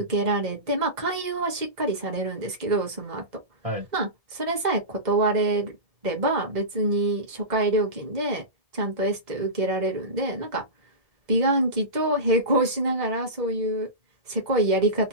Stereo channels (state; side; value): late; left; 2.0 ms